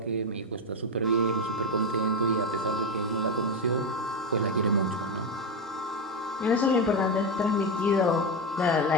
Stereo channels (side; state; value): both; normal; correlation 0.11